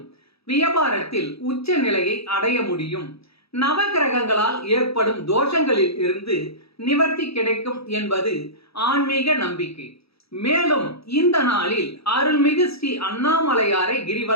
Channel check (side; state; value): right; late; 0.77 ms